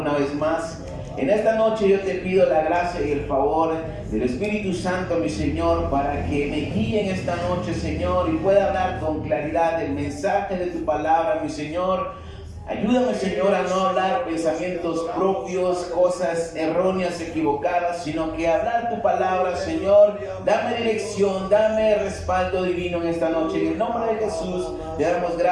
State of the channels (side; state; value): both; identical; correlation 1.00